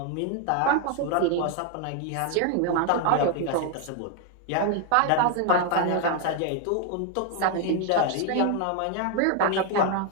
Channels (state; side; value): different; both; correlation 0.00